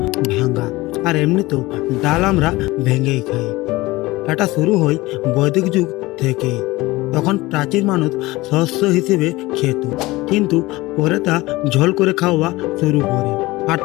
ভাঙা। আর এমনিতেও ডাল আমরা ভেঙেই খাই। এটা শুরু হয় বৈদিক যুগ থেকে। তখন প্রাচীন মানুষ শস্য হিসেবে খেত, কিন্তু পরে তা ঝোল করে খাওয়া শুরু করে। আর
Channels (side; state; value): right; quieter; 20.1 dB